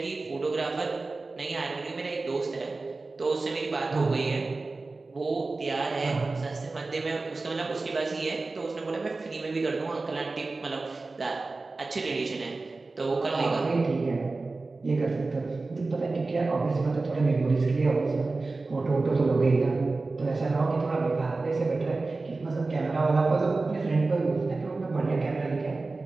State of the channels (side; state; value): left; quieter; 3.6 dB